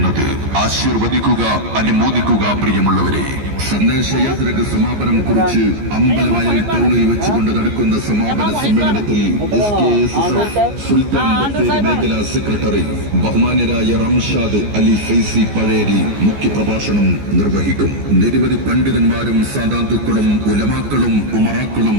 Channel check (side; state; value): left; late; 14 ms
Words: ആശീർവദിക്കുക, അനുമോദിക്കുക പ്രിയമുള്ളവരെ. സന്ദേശയാത്രക്ക് സമാപനം കുറിച്ച് അമ്പലവയൽ ടൗണിൽ വെച്ചുകൊണ്ട് നടക്കുന്ന സമാപന സമ്മേളനത്തിൽ സുൽത്താൻ ബത്തേരി മേഖലാ സെക്രട്ടറി ബഹുമാന്യരായ റംഷാദ് അലി ഫൈസി പഴേരി മുഖ്യപ്രഭാഷണം നിർവഹിക്കും. നിരവധി പണ്ഡിതന്മാരും സാദാത്തുക്കളും ഉലമാക്കളും ഉമറാക്കളും